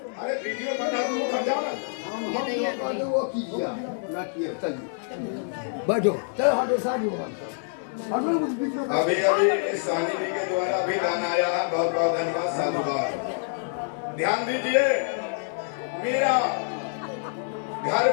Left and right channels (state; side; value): silent; right; digital silence